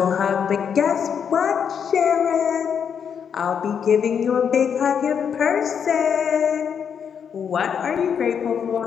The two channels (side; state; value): right; quieter; 7.5 dB